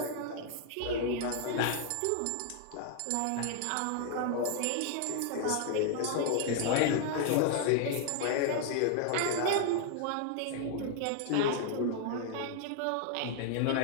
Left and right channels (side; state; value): both; different; correlation 0.00